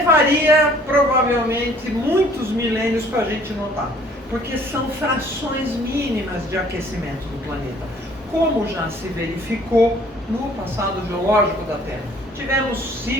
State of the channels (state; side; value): normal; both; correlation 0.56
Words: provavelmente muitos milênios para a gente notar, porque são frações mínimas de aquecimento do planeta, como já se verificou no passado geológico da Terra. Tivemos